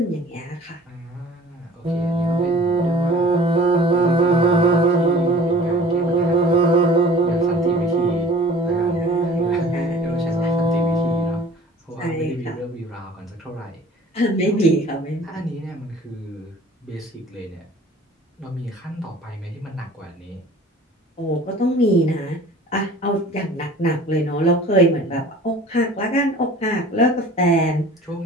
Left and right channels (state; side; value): normal; both; correlation 0.47